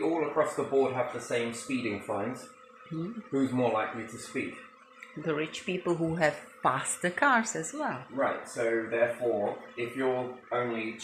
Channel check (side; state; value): both; identical; correlation 1.00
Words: all across the board have the same speeding fines, who's more likely to speed? The rich people who have faster cars as well. Right, so therefore, if you're only